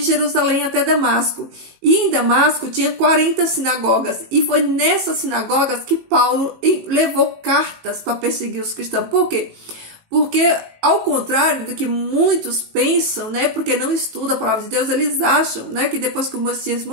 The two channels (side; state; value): left; late; 18 ms